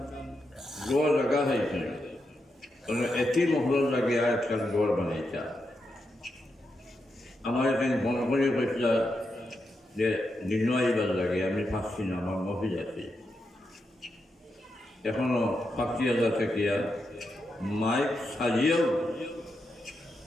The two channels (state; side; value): normal; both; correlation 0.85